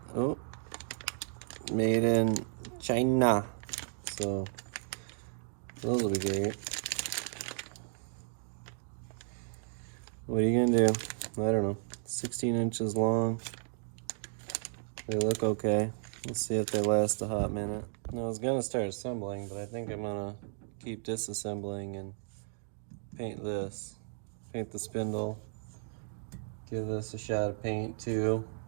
Oh, made in China. So, those will be great. What are you gonna do? I don't know. 16 inches long. They look okay. Let's see if they last a hot minute. Now, I was gonna start assembling, but I think I'm gonna keep disassembling and paint this. Paint the spindle. Give this a shot of paint too.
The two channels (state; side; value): silent; left; digital silence